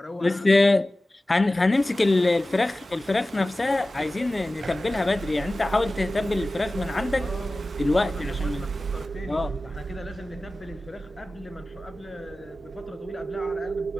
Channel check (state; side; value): normal; both; correlation 0.96